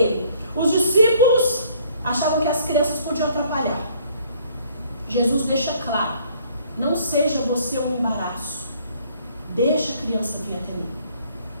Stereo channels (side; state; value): both; inverted; correlation -0.61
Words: Os discípulos achavam que as crianças podiam atrapalhar. Jesus deixa claro, não seja você um embaraço. Deixa a criança vir até mim.